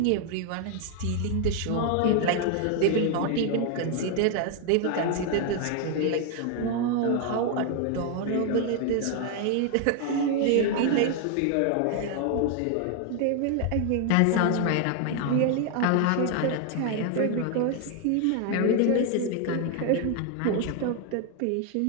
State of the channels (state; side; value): different; both; correlation 0.00